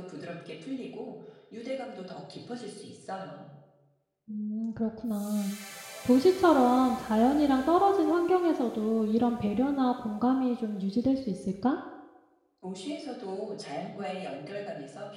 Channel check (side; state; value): both; identical; correlation 1.00